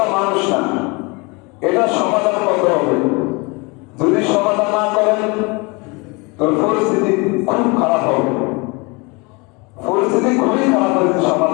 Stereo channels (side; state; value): right; quieter; 28.1 dB